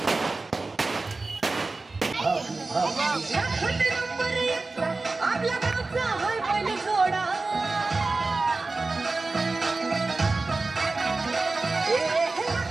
आपल्या गावचा होय पहिली घोडा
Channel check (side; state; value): left; quieter; 3.6 dB